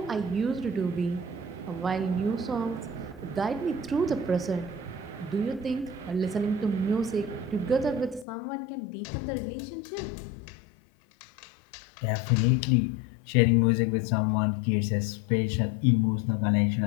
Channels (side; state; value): right; drops out; at 8.2 s